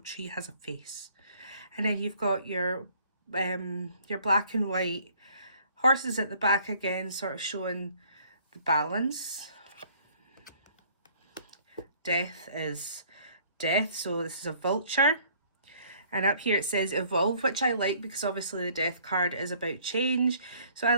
tree has a face. And then you've got your black and white horses at the back again, sort of showing the balance. Death is death, so this is a vulture. And up here it says evolve, which I like because obviously the death card is about change. So I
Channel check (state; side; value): inverted; both; correlation -0.58